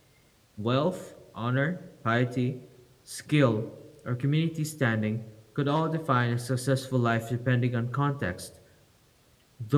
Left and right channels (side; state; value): both; identical; correlation 1.00